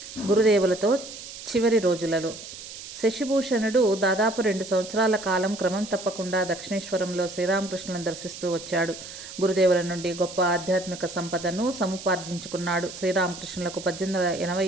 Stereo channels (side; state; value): right; noise; hiss, 12 dB below the sound